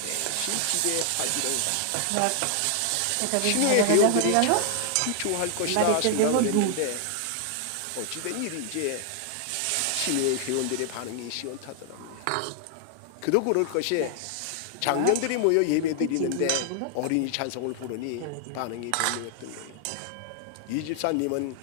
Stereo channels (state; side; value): different; both; correlation 0.00